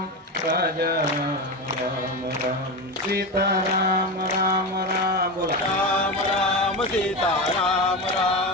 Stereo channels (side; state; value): both; normal; correlation 0.19